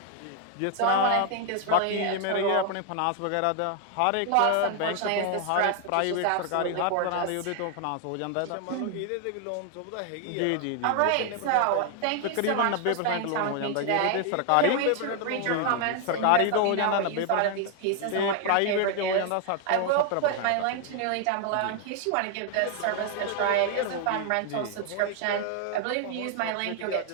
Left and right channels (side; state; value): both; different; correlation 0.00